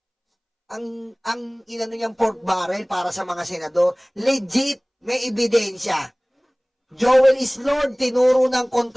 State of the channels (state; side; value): identical; both; correlation 1.00